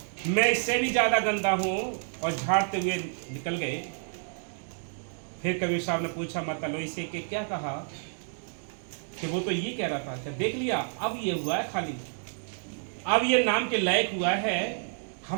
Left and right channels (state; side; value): silent; left; 58 dB below the other